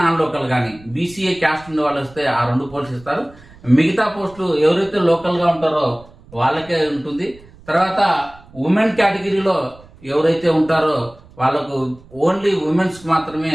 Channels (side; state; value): right; noise; rumble, 24 dB below the sound